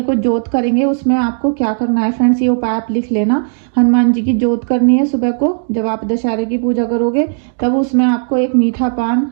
को जोत करेंगे, उसमें आपको क्या करना है फ्रेंड्स, ये उपाय आप लिख लेना। हनुमान जी की जोत करनी है सुबह को, जब आप दशहरे की पूजा करोगे, तब उसमें आपको एक मीठा पान,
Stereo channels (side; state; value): left; silent; 62 dB below the other